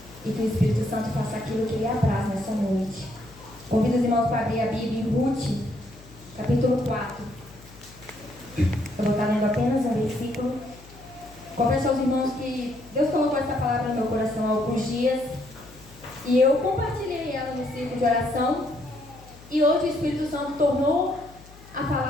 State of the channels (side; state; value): left; noise; hum, 22 dB below the sound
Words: e que o Espírito Santo faça aquilo que lhe apraz nessa noite. Convido os irmãos para abrir a Bíblia em Ruth, capítulo 4. Eu vou estar lendo apenas um versículo. Confesso aos irmãos que Deus colocou essa palavra no meu coração há alguns dias e eu compartilhei ela no círculo de oração. E hoje o Espírito Santo tornou a